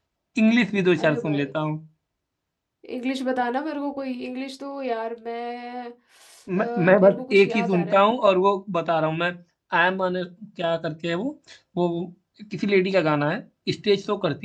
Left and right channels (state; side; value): identical; both; correlation 1.00